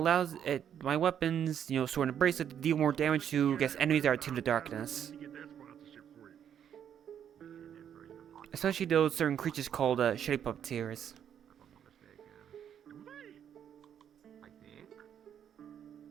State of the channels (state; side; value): quieter; left; 9.1 dB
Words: my weapons, Sword and Bracelet, to deal more damage to, enemies that are to the darkness. Especially those certain creatures called Shitty Puppeteers.